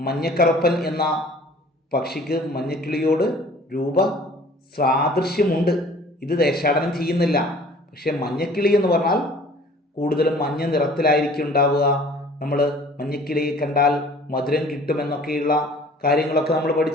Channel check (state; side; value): normal; both; correlation 0.50